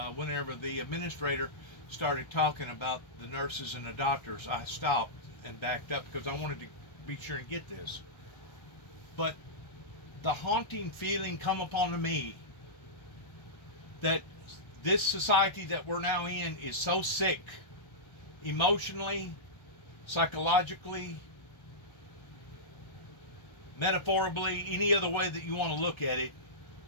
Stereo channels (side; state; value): right; late; 1.4 ms